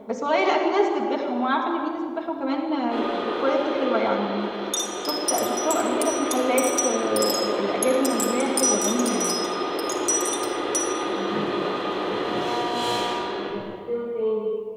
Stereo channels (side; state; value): both; identical; correlation 1.00